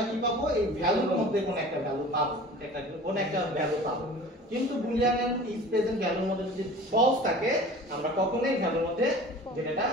কি পাবো, এই ভ্যালুর মধ্যে কোন একটা ভ্যালু পাবো, কোন একটা ভ্যালু পাবো। কিন্তু বুলিয়ান এন্ড ইজ প্রেজেন্ট ভ্যালুর মধ্যে যদি ফলস থাকে আমরা কখনোই ভ্যালুর মধ্যে ডেটাটা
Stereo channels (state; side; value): normal; both; correlation 0.41